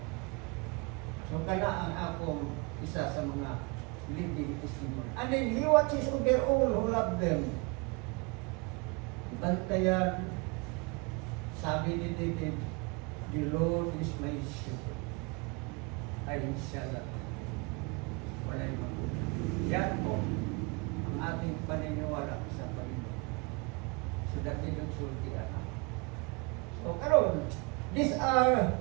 So, kana ang akong isa sa mga living testimony. And then, He watches over all who love them. Bantayan, sabi ni David, the Lord is my shepherd. I shall not walay magulang. Yan po ang ating paniniwala sa Panginoon. So, dati nagsulti na. So, karon, these are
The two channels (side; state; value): left; quieter; 29.4 dB